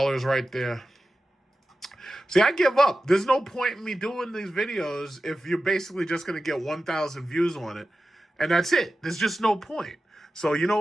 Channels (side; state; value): both; normal; correlation 0.93